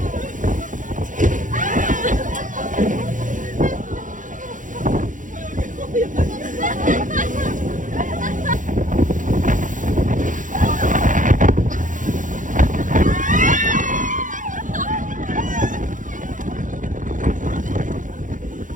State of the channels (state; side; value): late; left; 0.38 ms